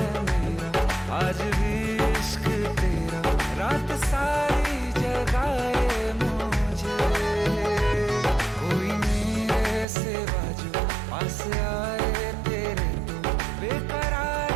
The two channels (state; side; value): drops out; left; at 9.9 s